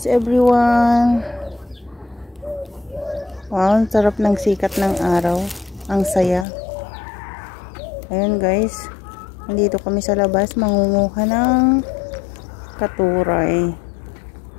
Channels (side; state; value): right; drops out; at 6.5 s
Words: everyone. Wow, ang sarap ng sikat ng araw. Ang saya. Ayun guys, nandito kami sa labas mangunguha ng katuray.